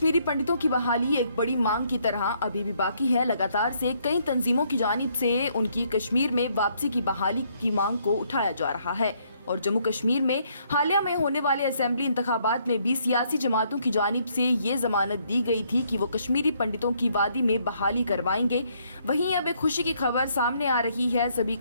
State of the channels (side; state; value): both; inverted; correlation -0.70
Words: पंडितों की बहाली एक बड़ी मांग की तरह अभी भी बाकी है। लगातार से कई तंजीमों की जानिब से उनकी कश्मीर में वापसी की बहाली की मांग को उठाया जा रहा है और जम्मू कश्मीर में हालिया में होने वाले असेंबली इंतखाबात में भी सियासी जमातों की जानिब से ये जमानत दी गई थी कि वो कश्मीरी पंडितों की वादी में बहाली करवाएंगे। वहीं अब एक खुशी की खबर सामने आ रही है सभी